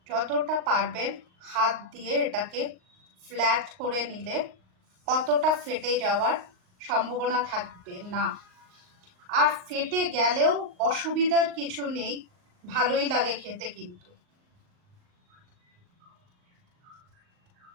যতটা পারবেন হাত দিয়ে এটাকে ফ্ল্যাট করে নিলে কতটা ফেটে যাওয়ার সম্ভাবনা থাকবে না। আর ফেটে গেলেও অসুবিধার কিছু নেই, ভালোই লাগে খেতে। কিন্তু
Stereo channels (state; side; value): late; left; 38 ms